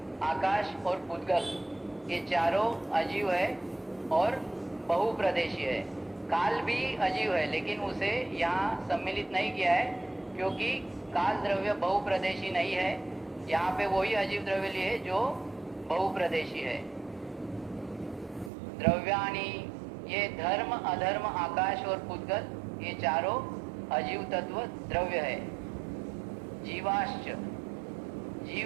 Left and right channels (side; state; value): left; drops out; at 18.5 s